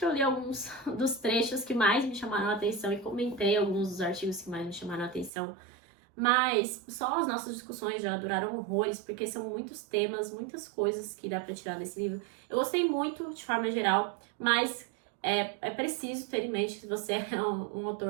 eu li alguns dos trechos que mais me chamaram a atenção e comentei alguns dos artigos que mais me chamaram a atenção, mas só as nossas discussões já duraram horrores, porque são muitos temas, muitas coisas que dá pra tirar desse livro. Eu gostei muito, de forma geral, mas é preciso ter em mente que você é um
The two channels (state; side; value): drops out; left; at 5.3 s